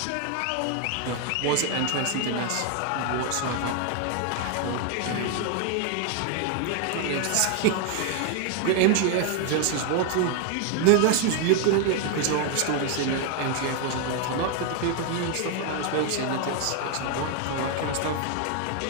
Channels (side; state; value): both; different; correlation 0.00